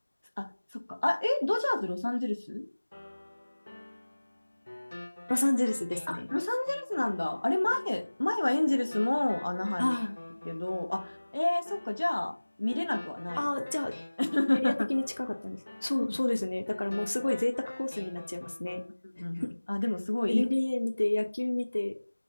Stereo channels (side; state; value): both; inverted; correlation -1.00